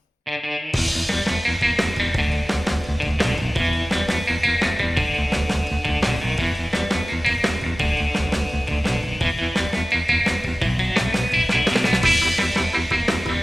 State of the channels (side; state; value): both; normal; correlation 0.97